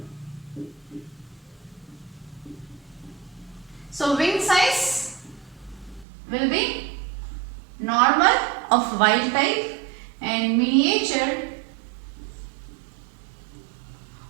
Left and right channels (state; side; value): drops out; left; at 6.1 s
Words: So wing size will be normal of wild type and miniature